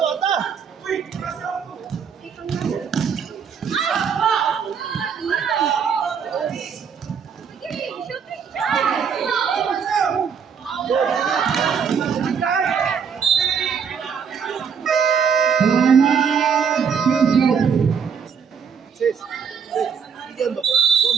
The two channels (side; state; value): left; quieter; 6.7 dB